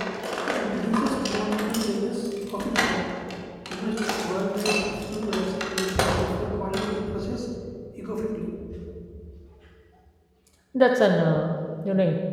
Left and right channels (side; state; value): both; identical; correlation 1.00